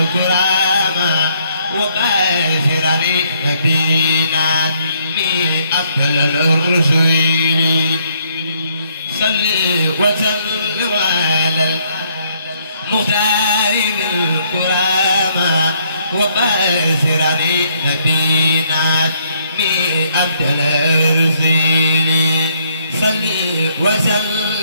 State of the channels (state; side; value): inverted; both; correlation -0.69